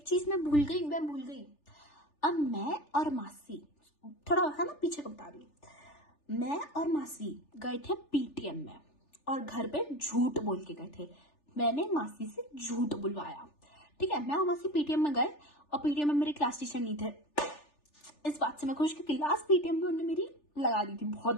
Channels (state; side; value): late; right; 3.4 ms